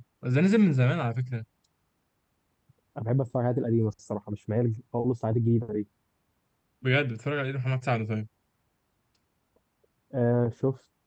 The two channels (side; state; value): both; identical; correlation 1.00